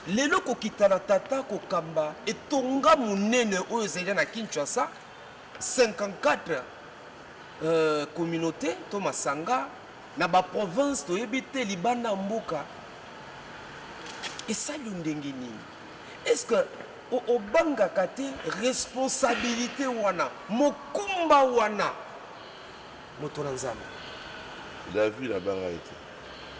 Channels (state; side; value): identical; both; correlation 1.00